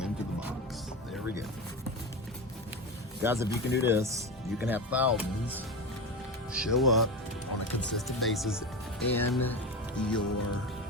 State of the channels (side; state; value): both; normal; correlation 0.22